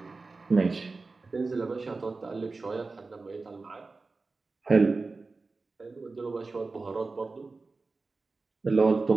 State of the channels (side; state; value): left; quieter; 3.8 dB